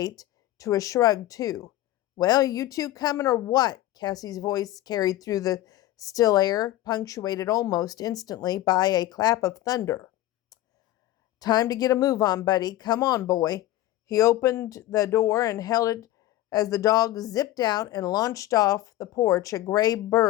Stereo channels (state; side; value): quieter; right; 14.9 dB